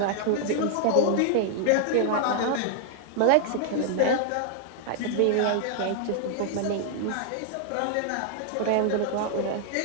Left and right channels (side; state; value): both; different; correlation -0.01